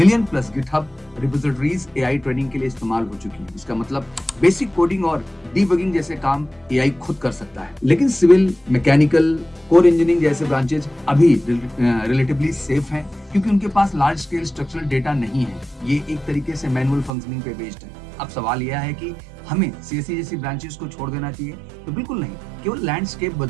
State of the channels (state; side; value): drops out; left; at 17.1 s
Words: plus GitHub repositories AI training के लिए इस्तेमाल हो चुकी है। इसका मतलब बेसिक कोडिंग और डीबगिंग जैसे काम एआई खुद कर सकता है। लेकिन सिविल, मैकेनिकल, कोर इंजीनियरिंग जैसे ब्रांचेज अभी रिलेटिवली सेफ हैं, क्योंकि उनके पास लार्ज स्केल स्ट्रक्चरल डेटा नहीं है। ये एक तरीके से मैनुअल फंक्शनिंग पे बेस्ड है। अब सवाल यह है कि हमें सीएससी जैसी ब्रांचेस को छोड़ देना चाहिए? तो बिल्कुल नहीं, केवल लैंडस्केप